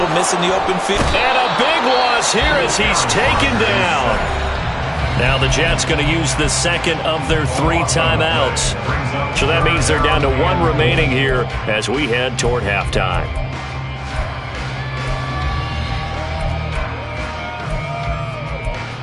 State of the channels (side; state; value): both; identical; correlation 1.00